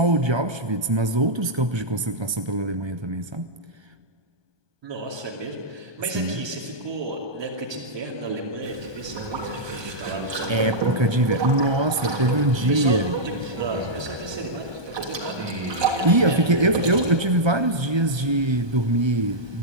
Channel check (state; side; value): late; left; 1.2 ms